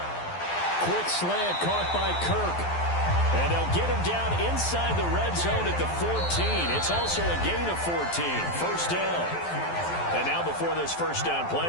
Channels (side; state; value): right; late; 12 ms